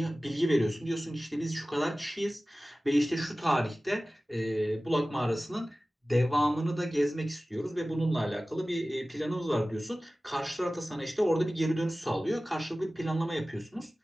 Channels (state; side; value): normal; both; correlation 0.97